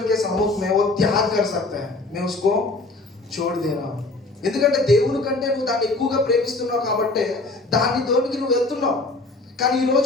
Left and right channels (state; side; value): quieter; right; 3.2 dB